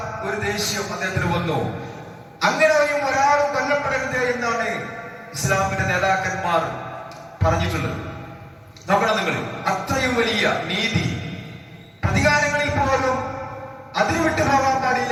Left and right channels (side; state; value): both; identical; correlation 1.00